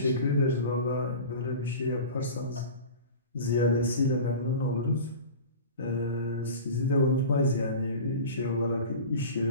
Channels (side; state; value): both; inverted; correlation -0.35